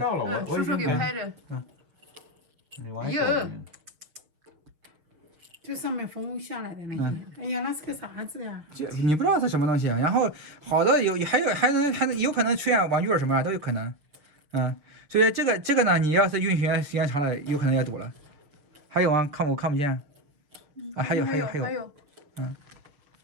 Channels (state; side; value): late; left; 6.7 ms